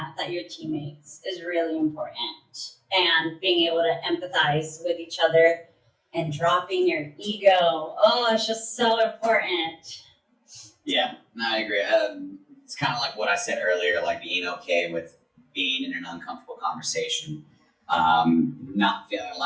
your teammates is really important, and being able to empathize with each other and dropping your ego. Oh, it's just so important. Yeah, no, I agree. It's kind of like what I said earlier, like being okay with being in an uncomfortable conversation. Not feeling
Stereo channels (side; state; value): both; identical; correlation 1.00